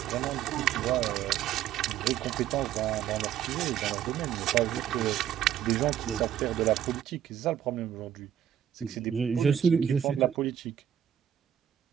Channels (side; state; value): left; quieter; 10.1 dB